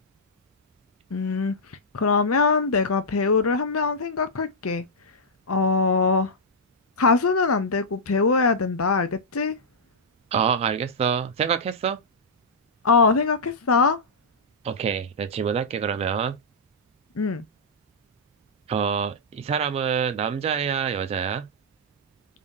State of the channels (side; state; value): both; normal; correlation -0.11